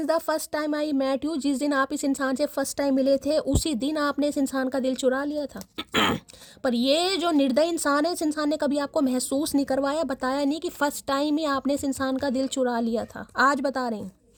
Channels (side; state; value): both; identical; correlation 1.00